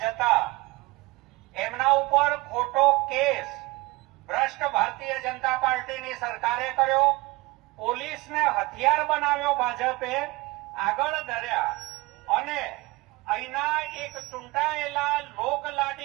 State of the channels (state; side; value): quieter; left; 22.6 dB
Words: જતા એમના ઉપર ખોટો કેસ ભ્રષ્ટ ભારતીય જનતા પાર્ટીની સરકારે કર્યો, પોલીસને હથિયાર બનાવ્યો ભાજપે, આગળ ધર્યા અને અહીંના એક ચૂંટાયેલા